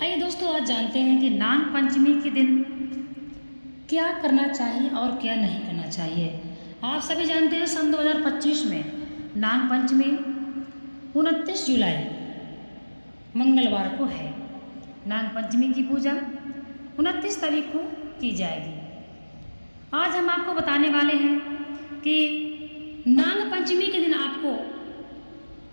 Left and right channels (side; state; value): both; inverted; correlation -1.00